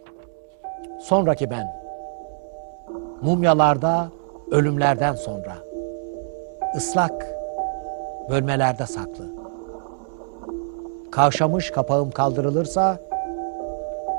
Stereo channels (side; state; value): left; silent; digital silence